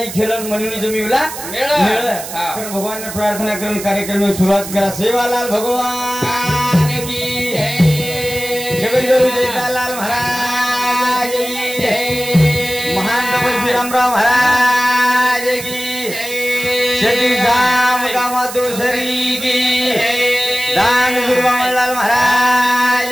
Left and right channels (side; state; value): right; noise; hiss, 10 dB below the sound